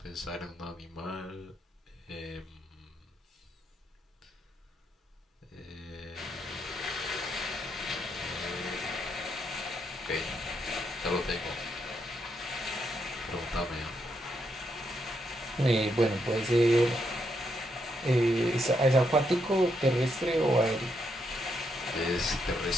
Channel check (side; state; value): both; normal; correlation 0.79